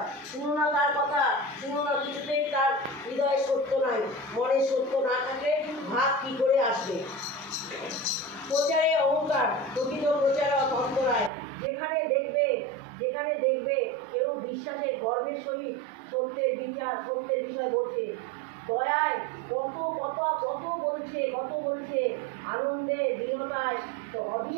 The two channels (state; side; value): drops out; left; at 11.3 s